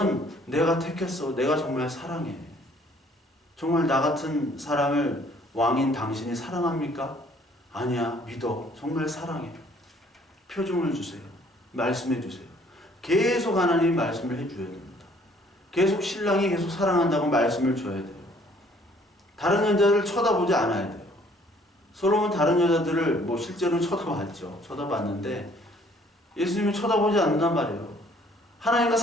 내가 택했어. 내가 정말 사랑해. 정말 나 같은 사람을 왕인 당신이 사랑합니까? 아니야. 믿어. 정말 사랑해. 표정을 주세요. 말씀해 주세요. 계속 하나님이 말씀을 해줘야 됩니다. 계속 신랑이 계속 사랑한다고 말씀을 줘야 돼요. 다른 여자들을 쳐다보지 않아야 돼요. 솔로몬 다른 여자들을 실제로는 쳐다봤죠. 쳐다봤는데 예수님이 쳐다보지 않는단 말이에요. 하나님과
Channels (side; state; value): both; normal; correlation 0.60